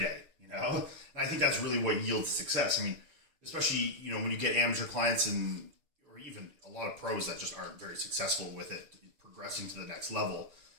you know? And I think that's really what yields success. I mean, especially, you know, when you get amateur clients and or even a lot of pros that just aren't very successful with it, progressing to the next level,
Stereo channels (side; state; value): left; late; 6.7 ms